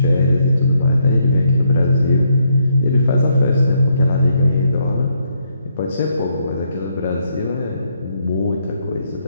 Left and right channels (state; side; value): inverted; both; correlation -0.75